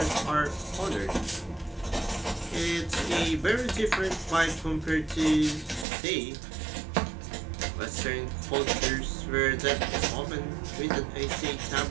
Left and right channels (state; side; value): drops out; left; at 5.9 s